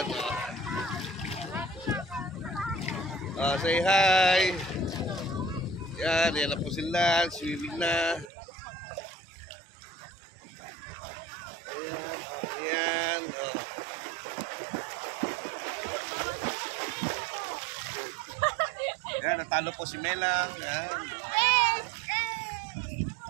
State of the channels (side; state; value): left; drops out; at 8.3 s